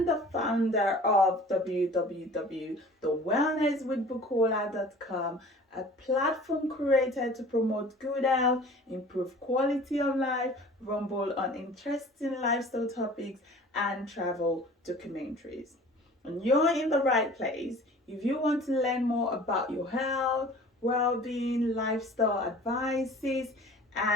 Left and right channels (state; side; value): normal; both; correlation 0.46